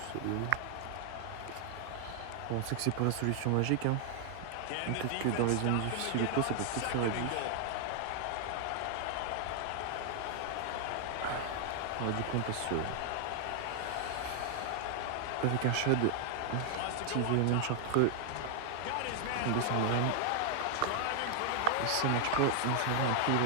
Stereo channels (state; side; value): different; both; correlation 0.00